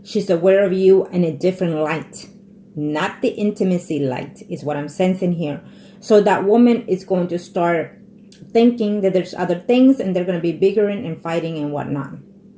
she's aware of you in a different light. Not the intimacy light is what I'm sensing here. So that woman is going to start thinking that there's other things, and they're going to be bickering and fighting and whatnot.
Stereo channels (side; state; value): both; identical; correlation 1.00